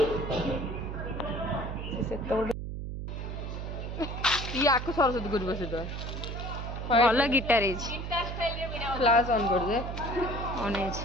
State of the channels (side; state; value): right; noise; hum, 6 dB below the sound